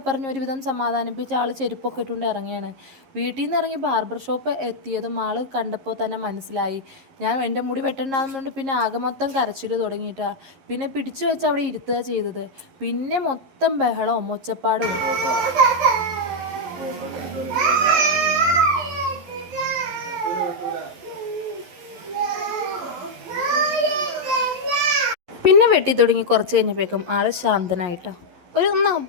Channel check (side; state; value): left; late; 11 ms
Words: പറഞ്ഞ് ഒരുവിധം സമാധാനിപ്പിച്ച് ആൾ ചെരുപ്പൊക്കെ ഇട്ടുകൊണ്ട് ഇറങ്ങിയാണ്. വീട്ടിൽ നിന്ന് ഇറങ്ങി ബാർബർ ഷോപ്പ് എത്തിയതും ആൾ കണ്ടപ്പോൾ തന്നെ മനസ്സിലായി ഞാൻ എൻ്റെ മുടി വെട്ടണ്ടാകുന്നുണ്ട്. പിന്നെ ആകെ മൊത്തം കരച്ചിൽ തുടങ്ങിയിട്ടാ. പിന്നെ പിടിച്ചു വെച്ച് അവിടെ ഇരുത്തുക ചെയ്തത്. പിന്നെ മൊത്തം ബഹളവും ഒച്ചപ്പാടും. പിന്നെ വെട്ടി തുടങ്ങി കുറച്ച് കഴിഞ്ഞപ്പോഴേക്കും ആൾ ശാന്തനായിട്ടോ. ഒന്ന്